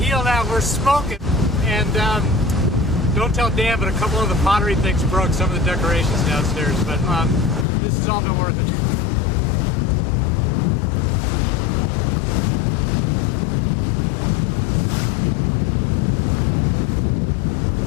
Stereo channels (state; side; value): drops out; right; at 7.7 s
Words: now. We're smoking. And don't tell Dan, but a couple of the pottery things broke some of the decorations downstairs. But this has all been worth it.